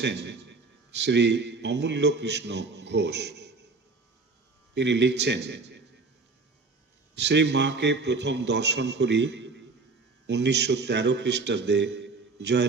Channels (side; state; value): left; quieter; 4.0 dB